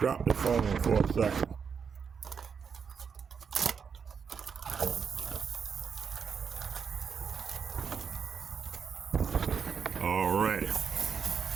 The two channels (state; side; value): quieter; left; 6.4 dB